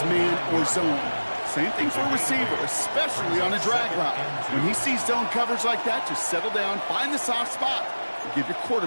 man or zone. Same thing for a receiver, especially on a drag route. When he sees zone coverage like that, just settle down, find the soft spot, and give your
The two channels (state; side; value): inverted; both; correlation -1.00